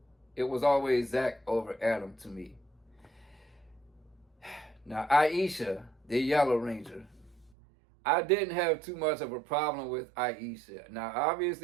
it was always Zach over Adam to me. Now, Aisha, the Yellow Ranger, I didn't have too much of a problem with Aisha. Now,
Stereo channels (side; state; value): left; drops out; at 7.5 s